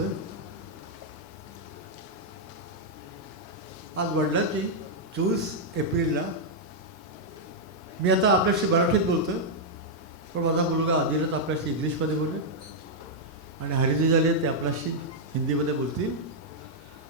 आज वडिलांची 24 एप्रिलला मी आता आपल्याशी मराठीत बोलतोय, पण माझा मुलगा आदिनाथ आपल्याशी इंग्लिशमध्ये बोलेल आणि हरिजी झाले ते आपल्याशी हिंदीमध्ये बोलतील.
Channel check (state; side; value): normal; both; correlation -0.05